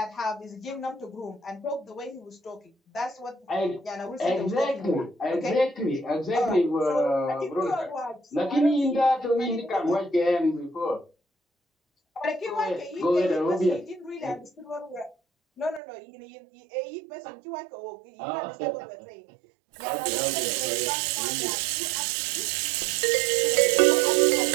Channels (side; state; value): left; drops out; at 15.8 s